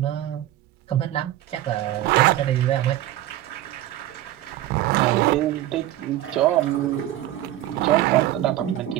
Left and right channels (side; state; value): left; quieter; 14.1 dB